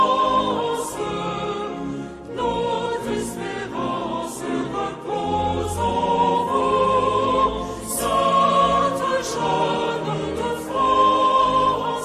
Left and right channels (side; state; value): both; identical; correlation 1.00